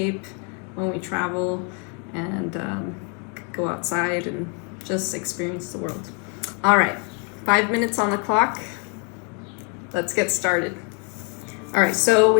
when we travel and go outside and just experience the world. All right, 5 minutes on the clock. Let's get started. All right, so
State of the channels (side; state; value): right; quieter; 37.4 dB